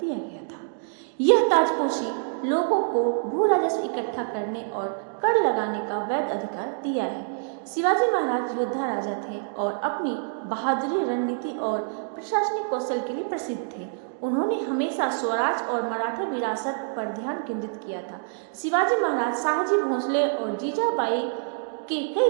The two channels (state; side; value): silent; left; digital silence